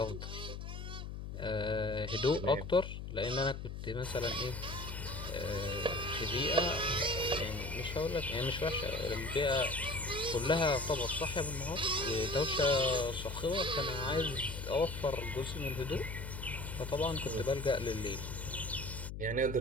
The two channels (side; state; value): left; noise; hum, 7 dB below the sound